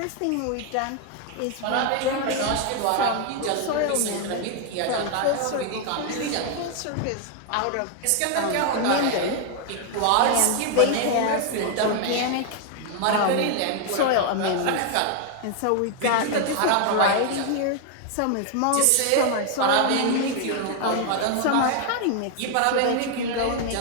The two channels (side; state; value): both; different; correlation 0.00